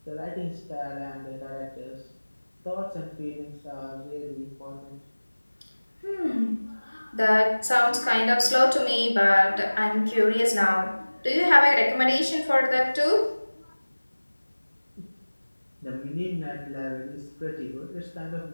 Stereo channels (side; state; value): both; inverted; correlation -1.00